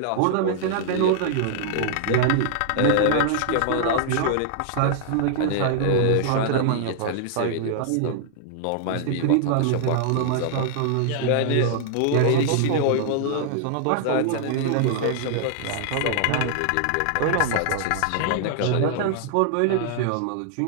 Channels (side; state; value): both; different; correlation -0.01